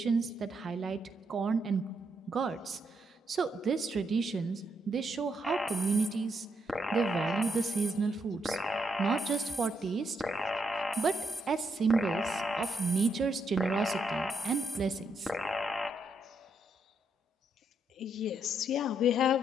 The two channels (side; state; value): both; normal; correlation 0.78